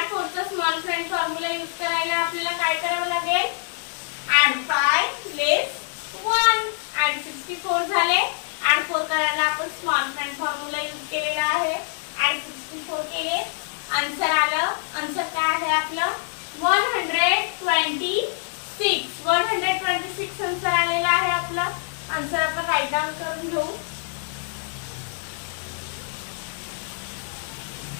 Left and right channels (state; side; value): silent; right; digital silence